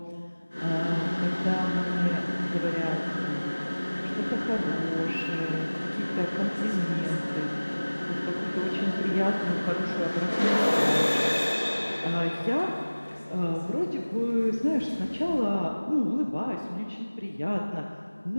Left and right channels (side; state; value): both; inverted; correlation -1.00